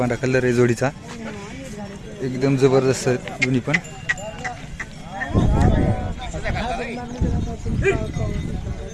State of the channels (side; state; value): both; identical; correlation 1.00